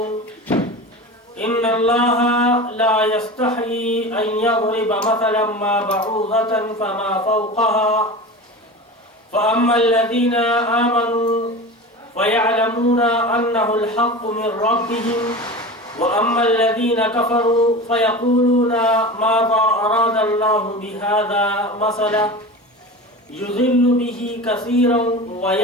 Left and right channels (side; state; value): both; normal; correlation 0.31